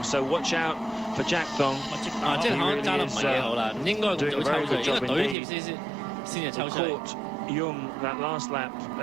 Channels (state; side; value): drops out; left; at 5.4 s